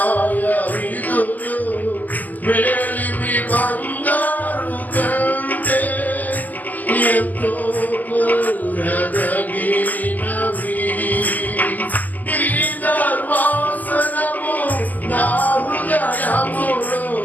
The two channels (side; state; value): right; late; 0.082 ms